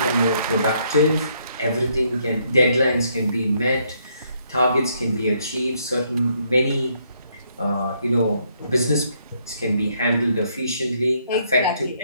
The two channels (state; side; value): inverted; both; correlation -0.72